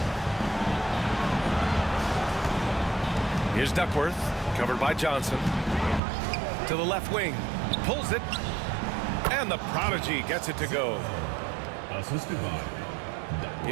Here's Duckworth, covered by Johnson. To the left wing, pulls it, and the prodigy gets it to go. Assisted by.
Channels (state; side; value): drops out; left; at 6.0 s